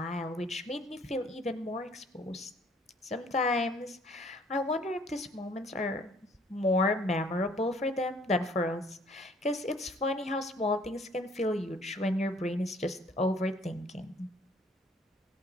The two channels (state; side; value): normal; both; correlation 0.59